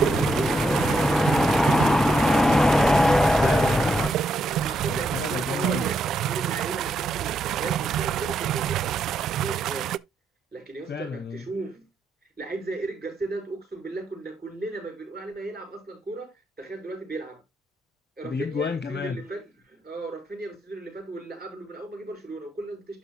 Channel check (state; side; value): normal; both; correlation 0.80